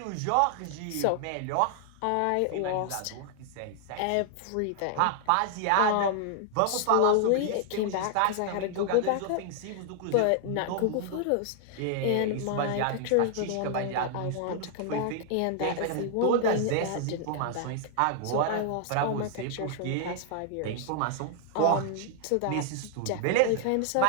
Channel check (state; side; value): different; both; correlation 0.00